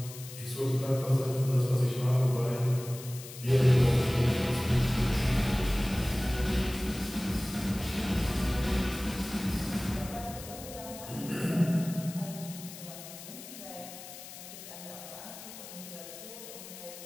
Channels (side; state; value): left; noise; hiss, 14 dB below the sound